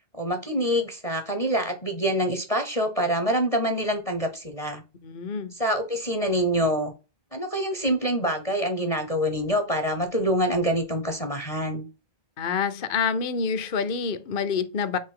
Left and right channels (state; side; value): late; right; 1.7 ms